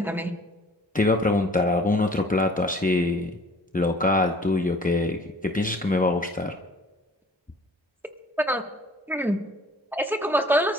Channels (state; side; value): normal; both; correlation 0.51